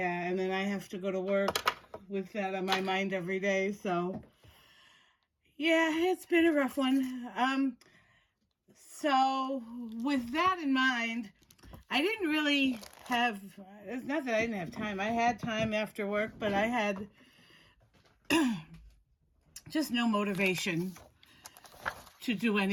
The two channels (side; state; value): both; identical; correlation 1.00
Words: and then I have to go to work with that on my mind every day, so yeah, it's been a rough one. So with that in mind, I didn't really have, it's not that I didn't have time. I had time after work, but I had just no motivation to do